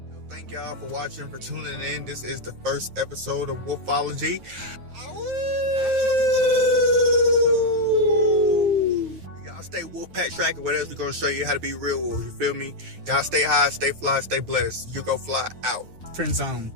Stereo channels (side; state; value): left; late; 9.3 ms